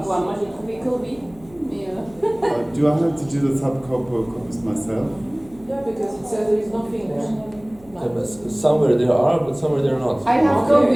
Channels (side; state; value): left; noise; hum, 25 dB below the sound